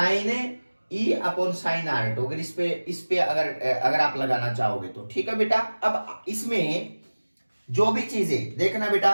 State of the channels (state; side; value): inverted; both; correlation -1.00